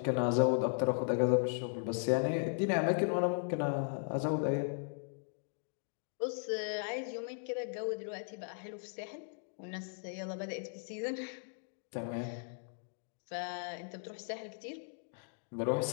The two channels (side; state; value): right; silent; digital silence